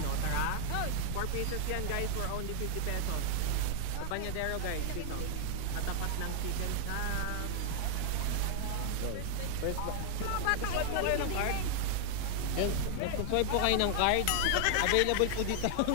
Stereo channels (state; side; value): different; both; correlation 0.00